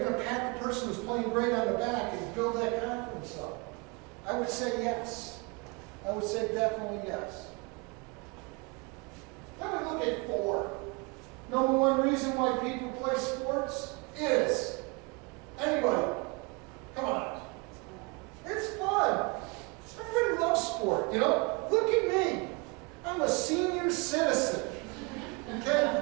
to pat the person who's playing great on the back and build that confidence up? I would say yes. I would say definitely yes. Then we look at 4. Number 1 reason why people play sports is, anybody, come on, it's fun. Everybody loves sport, you know? Look at me. I'm a senior citizen,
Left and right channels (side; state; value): left; quieter; 29.7 dB